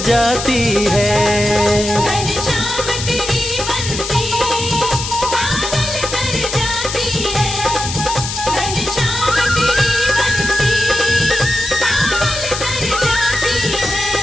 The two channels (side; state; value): left; noise; hiss, 5 dB below the sound